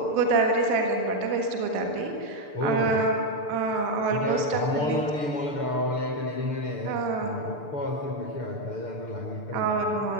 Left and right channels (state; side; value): late; right; 6.8 ms